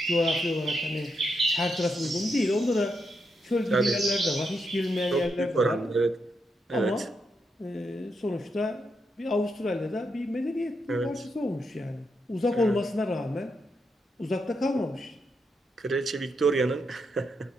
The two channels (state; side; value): normal; both; correlation 0.82